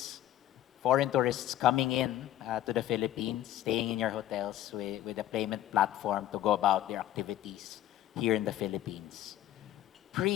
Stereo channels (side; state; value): right; quieter; 12.9 dB